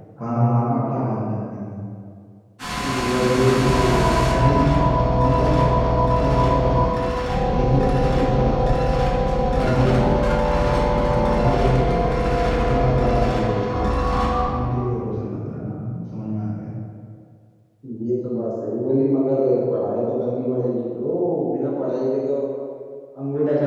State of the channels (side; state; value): both; identical; correlation 1.00